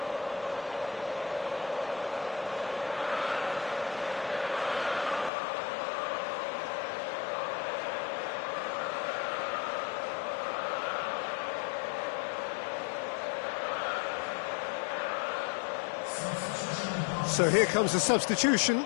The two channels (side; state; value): right; drops out; at 5.3 s